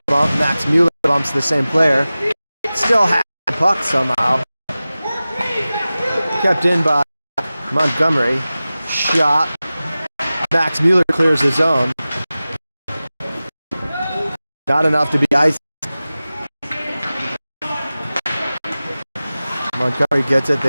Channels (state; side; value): inverted; both; correlation -0.96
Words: bump. Max Mueller bumps the same player. Still has the puck somehow. Kept in by Montgomery. Shot. Max Mueller clears the zone. Not enough to be iced. Montgomery gets it.